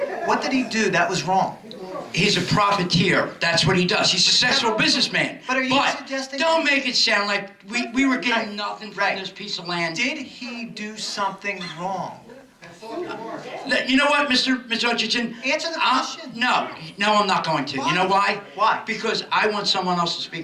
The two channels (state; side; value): identical; both; correlation 1.00